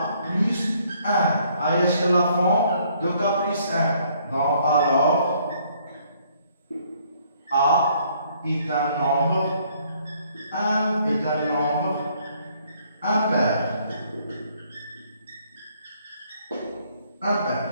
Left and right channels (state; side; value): inverted; both; correlation -0.65